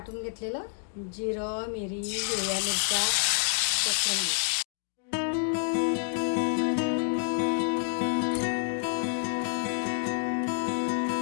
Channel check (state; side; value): silent; right; 55 dB below the other